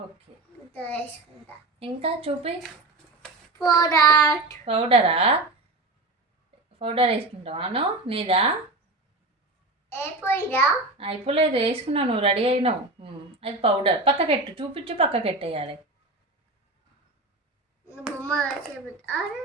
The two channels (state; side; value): quieter; left; 3.0 dB